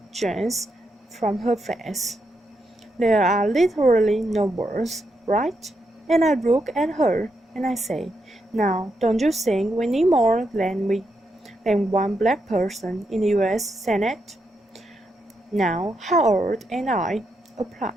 drains from her face. There are literally no words, right? And I look at her and I say, now, don't you think we need more than one black person in the U.S. Senate? Now, Howard and I, a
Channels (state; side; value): normal; both; correlation 0.82